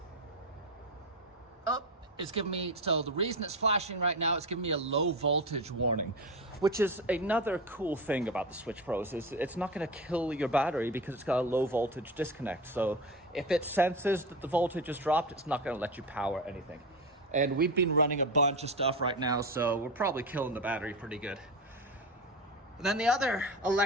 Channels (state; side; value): normal; both; correlation 0.23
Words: It's giving me, so the reason it's flashing right now, it's giving me a low voltage warning, which is another cool thing about the SwitchPros, is it's not gonna kill your battery because it's got a low voltage disconnect. So if it senses that the voltage has dropped, it's not gonna let you power anything. And we've been running a bunch of stuff right now, so we're probably killing the battery pretty good. And then the other